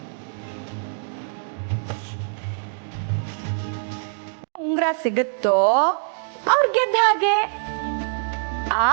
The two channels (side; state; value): left; silent; digital silence